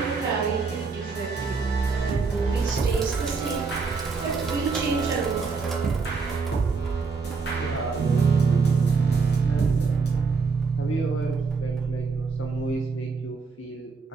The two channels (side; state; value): left; quieter; 4.7 dB